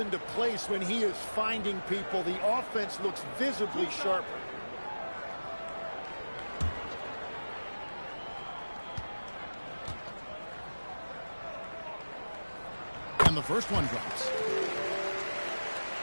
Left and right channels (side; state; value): both; inverted; correlation -1.00